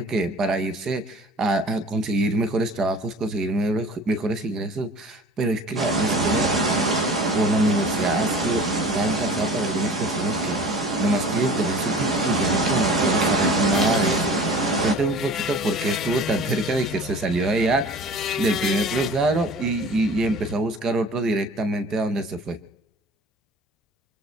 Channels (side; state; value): both; normal; correlation 0.43